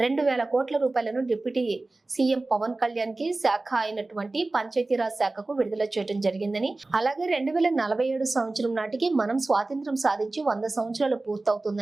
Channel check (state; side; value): quieter; left; 3.1 dB